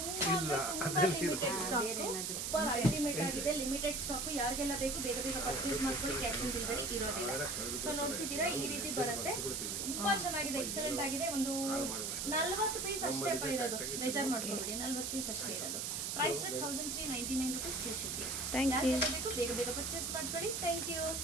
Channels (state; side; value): noise; right; hiss, 2 dB below the sound